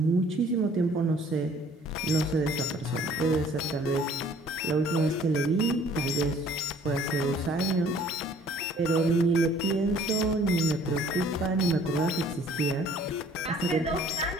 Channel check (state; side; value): normal; both; correlation 0.56